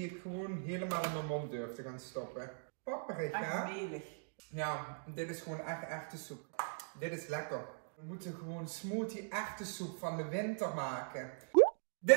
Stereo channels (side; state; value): left; silent; digital silence